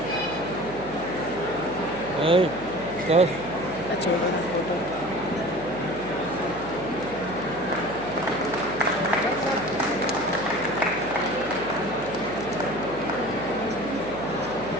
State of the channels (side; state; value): right; noise; hum, 14 dB below the sound